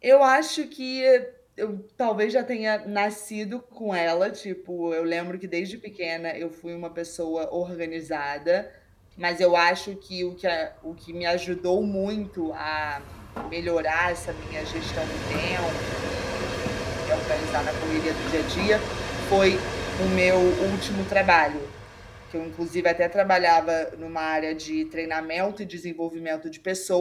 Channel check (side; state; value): both; identical; correlation 1.00